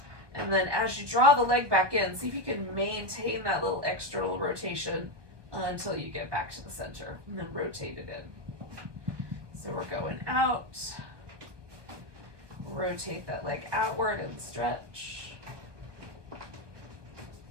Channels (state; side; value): late; left; 1.2 ms